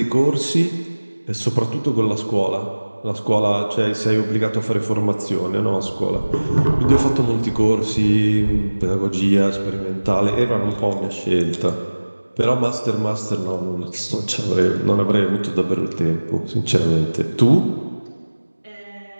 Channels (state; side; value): inverted; both; correlation -1.00